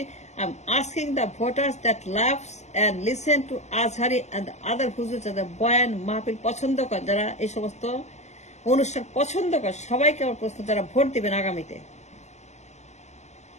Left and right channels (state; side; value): late; right; 0.33 ms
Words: I am asking the voters that loves and listen to Azhari and other হুজুর, যারা বয়ান মাহফিল পছন্দ করে, যারা এই সমস্ত অনুষ্ঠান পছন্দ করে, সবাইকে আমার প্রশ্ন, যারা ভোট দিবেন আগামীতে,